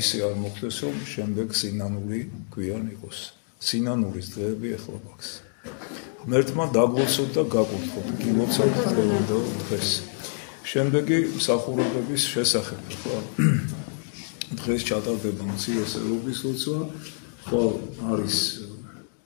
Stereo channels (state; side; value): silent; right; digital silence